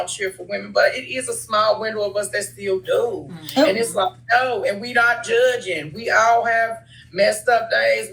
cheer for women, but it is a small window of us that still do. And it's like, no, and we not judging. We all have messed up days.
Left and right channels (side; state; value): both; identical; correlation 1.00